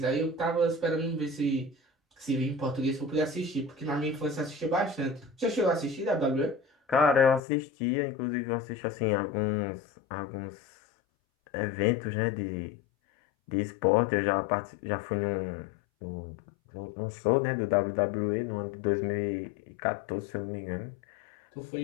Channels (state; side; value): drops out; right; at 7.4 s